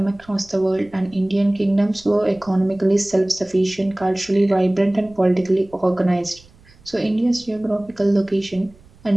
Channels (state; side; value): noise; right; rumble, 27 dB below the sound